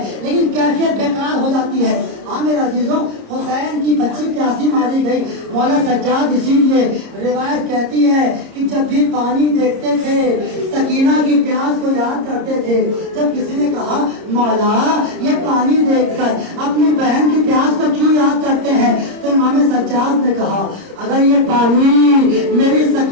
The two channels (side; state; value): left; late; 30 ms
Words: लेकिन कैफियत बेकरार हो जाती है। हाँ मेरे अजीजों, हुसैन की बच्ची प्यासी मारी गई। मौला सज्जाद इसीलिए रिवायत कहती है कि जब भी पानी देखते थे सकीना की प्यास को याद करते थे। जब किसी ने कहा मौला ये पानी देखकर अपनी बहन की प्यास को क्यों याद करते हैं, तो इमाम सज्जाद ने कहा अगर ये पानी मेरी